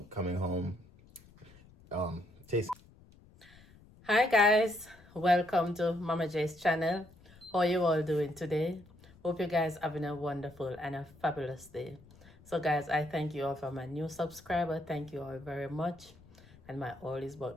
Coming home, taste. Hi guys, welcome to Mama J's channel. How you all doing today? Hope you guys having a wonderful and a fabulous day. So guys, I thank you all for my new subscriber. Thank you all very much. And my all is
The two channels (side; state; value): left; noise; rumble, 24 dB below the sound